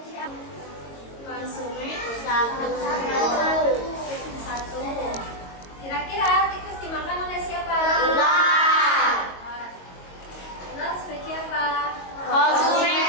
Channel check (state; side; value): late; right; 22 ms